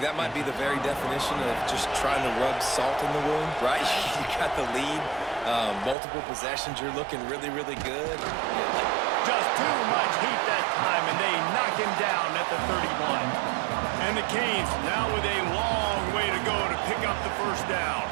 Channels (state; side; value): drops out; left; at 6.0 s